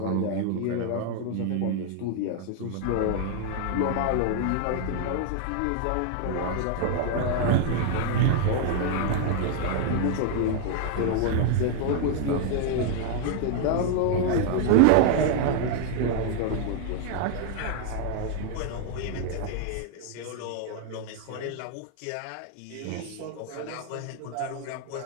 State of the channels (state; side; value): different; both; correlation 0.00